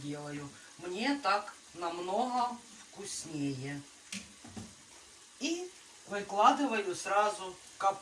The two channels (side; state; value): both; identical; correlation 1.00